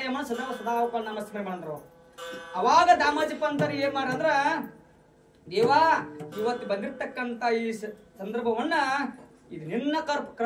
ಸದಾ ನಮಸ್ಕಾರ ಮಾಡಿದ್ರು. ಅವಾಗ ದಾಮಾಜಿ ಪಂತರ ಏನ್ ಮಾಡ್ರಂದ್ರ ದೇವಾ ಇವತ್ತು ಬಂದಿರ್ತಕ್ಕಂತ ಈ ಸಂದರ್ಭವನ್ನ ಇದು ನಿನ್ನ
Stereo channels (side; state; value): both; identical; correlation 1.00